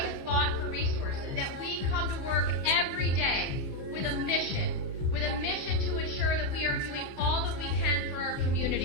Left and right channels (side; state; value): left; late; 15 ms